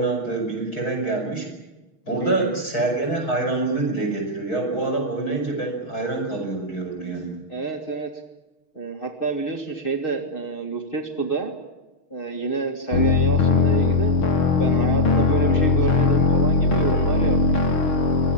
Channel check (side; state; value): right; late; 6.4 ms